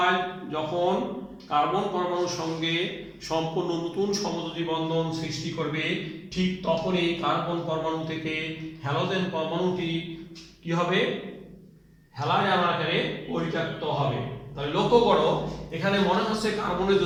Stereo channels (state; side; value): identical; both; correlation 1.00